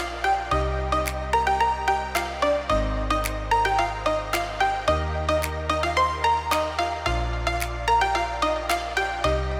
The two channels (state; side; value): identical; both; correlation 1.00